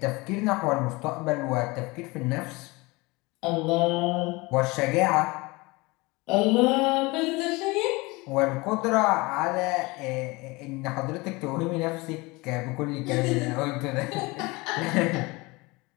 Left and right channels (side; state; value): right; quieter; 24.0 dB